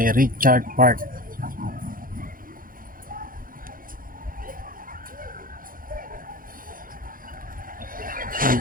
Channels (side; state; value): left; late; 0.41 ms